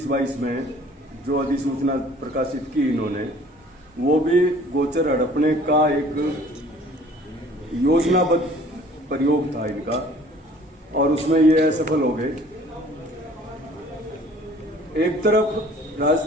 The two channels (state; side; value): normal; both; correlation 0.52